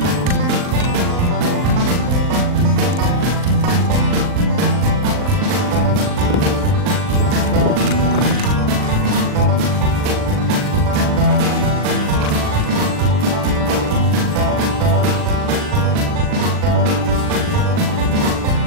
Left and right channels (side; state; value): left; late; 39 ms